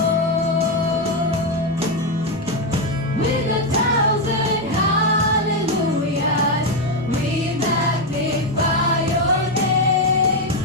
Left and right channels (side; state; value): both; normal; correlation 0.06